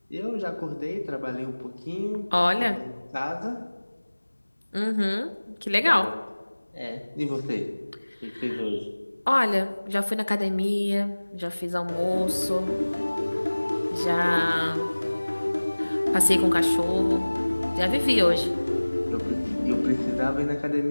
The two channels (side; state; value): both; inverted; correlation -1.00